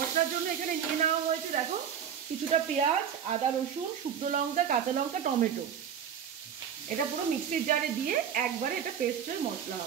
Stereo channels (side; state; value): left; quieter; 8.3 dB